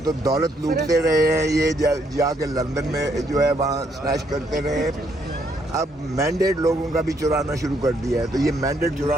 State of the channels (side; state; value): both; normal; correlation 0.72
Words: تو دولت لوٹتے رہے ہیں یہ جا کے لندن میں جو ہے وہاں سنیچ کرتے رہے ہیں. اب مینڈیٹ لوگوں کا بھی چرانا شروع کر دیا ہے تو یہ مینڈیٹ